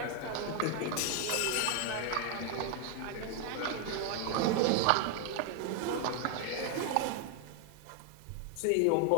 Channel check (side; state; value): both; different; correlation 0.01